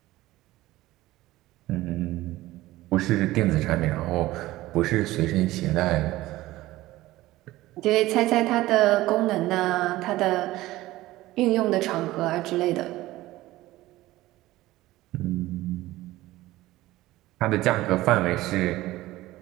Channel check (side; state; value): left; quieter; 17.2 dB